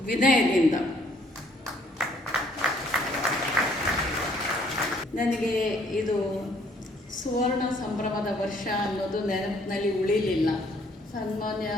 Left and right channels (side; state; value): both; normal; correlation 0.63